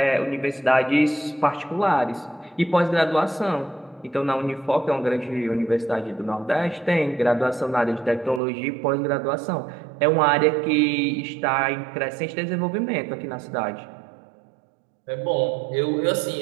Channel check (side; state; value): left; drops out; at 8.4 s